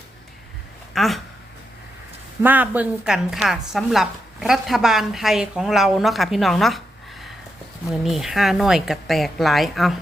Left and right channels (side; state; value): both; normal; correlation 0.85